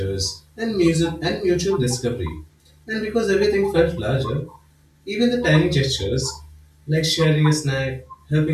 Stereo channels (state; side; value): identical; both; correlation 1.00